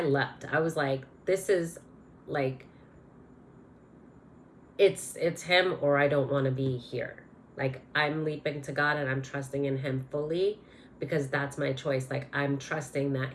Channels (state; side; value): identical; both; correlation 1.00